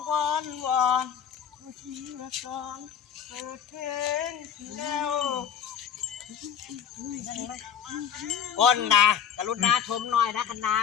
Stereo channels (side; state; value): right; quieter; 8.3 dB